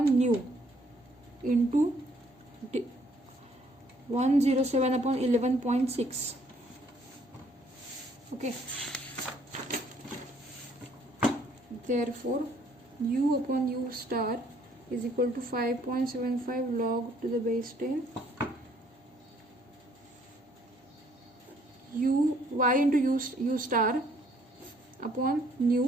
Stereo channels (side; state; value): both; normal; correlation 0.64